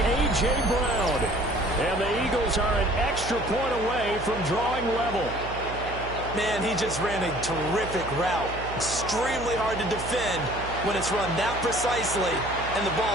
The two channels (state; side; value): noise; right; hum, 10 dB below the sound